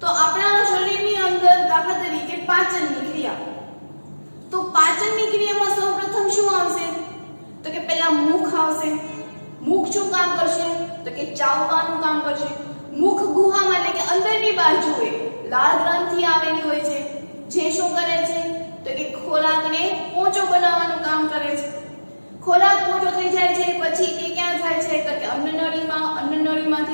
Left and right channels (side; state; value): both; inverted; correlation -1.00